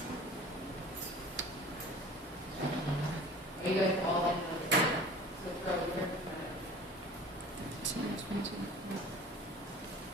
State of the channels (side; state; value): both; normal; correlation 0.43